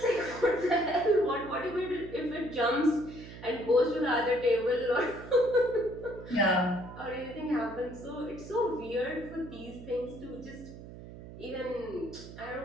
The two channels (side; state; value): right; noise; hum, 14 dB below the sound